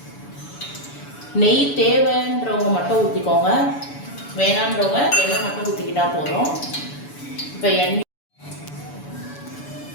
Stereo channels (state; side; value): late; right; 7.0 ms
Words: நெய் தேவைன்றவங்க மட்டும் ஊற்றிக்கோங்க, வேணான்றவங்க எண்ணெய் மட்டும் ஊற்றிக்கிட்டா போதும். இப்போ எண்ணெய்